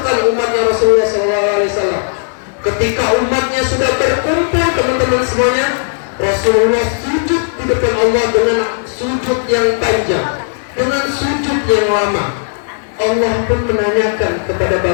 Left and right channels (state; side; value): silent; right; digital silence